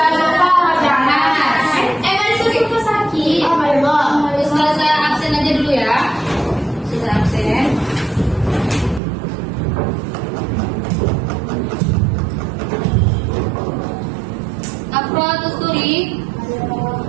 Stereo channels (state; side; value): drops out; left; at 9.0 s